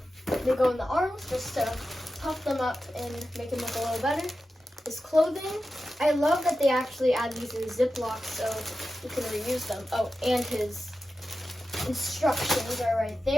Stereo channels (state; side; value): normal; both; correlation 0.92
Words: they go in the arms just to puff them up and make them look a little better. His clothing, I love that they actually add these in Ziplocs so you can reuse them. Oh, and his instructions are right